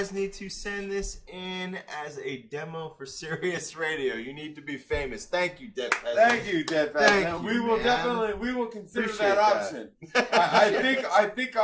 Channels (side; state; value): both; identical; correlation 1.00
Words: need to send this in as a demo for Sirius Radio. You need to be famous. Thank you, Dead Peasant. Thank you, Dead Peasant. Thank We you, will man. definitely consider Appreciate that option. I